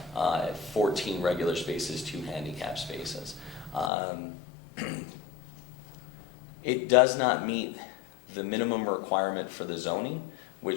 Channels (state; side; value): drops out; right; at 3.9 s